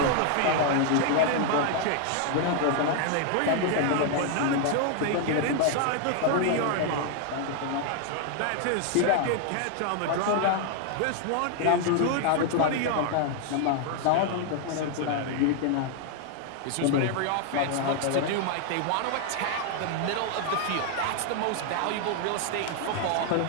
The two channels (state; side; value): different; both; correlation 0.00